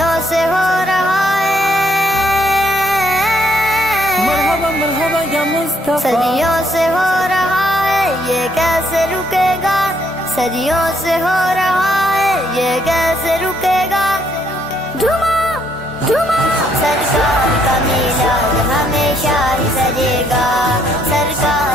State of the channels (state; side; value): normal; both; correlation 0.70